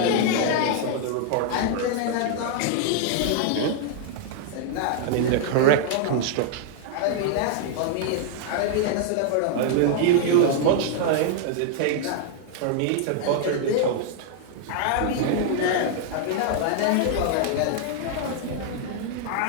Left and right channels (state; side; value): different; both; correlation -0.01